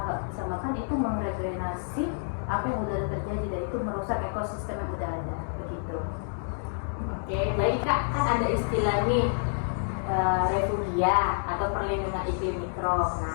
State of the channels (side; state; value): right; silent; digital silence